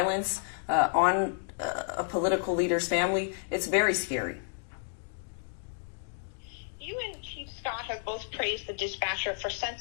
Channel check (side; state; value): right; silent; digital silence